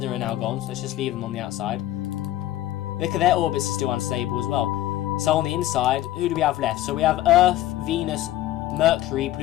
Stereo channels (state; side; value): quieter; right; 14.5 dB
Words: are now gone. So let's just leave them on the outside. Look at their orbits are still unstable as well. So on the inside, who do we have left? So we have Earth, Venus, Mercury,